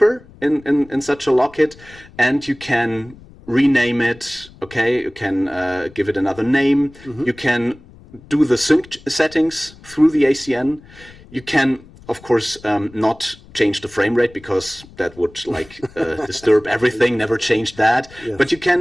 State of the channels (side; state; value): left; noise; rumble, 22 dB below the sound